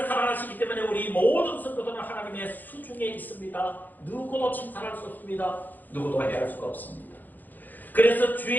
사랑하시기 때문에 우리 모든 성도들은 하나님의 수중에 있습니다. 누구도 침탈할 수 없습니다. 누구도 해할 수가 없습니다. 그래서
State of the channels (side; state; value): right; late; 0.086 ms